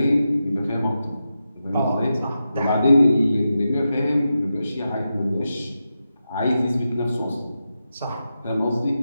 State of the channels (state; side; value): inverted; both; correlation -0.90